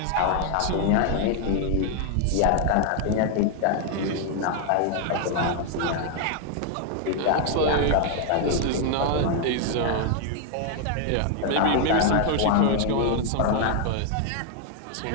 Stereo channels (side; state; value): both; different; correlation 0.00